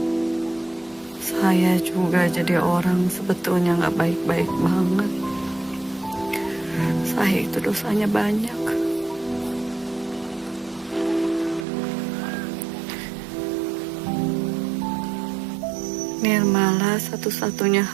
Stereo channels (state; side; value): drops out; left; at 11.7 s